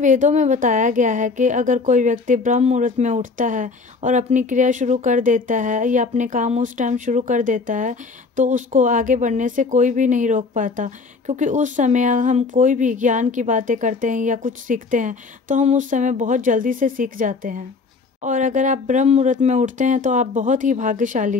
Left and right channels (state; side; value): quieter; right; 4.3 dB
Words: में बताया गया है कि अगर कोई व्यक्ति ब्रह्म मुहूर्त में उठता है और अपनी क्रिया शुरू कर देता है या अपने काम उस टाइम शुरू कर देता है तो उसको आगे बढ़ने से कोई भी नहीं रोक पाता, क्योंकि उस समय हम कोई भी ज्ञान की बातें करते हैं या कुछ सीखते हैं तो हम उस समय बहुत जल्दी से सीख जाते हैं। और अगर आप ब्रह्म मुहूर्त में उठते हैं तो आप बहुत ही